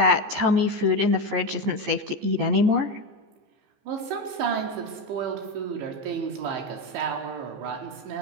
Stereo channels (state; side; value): late; left; 15 ms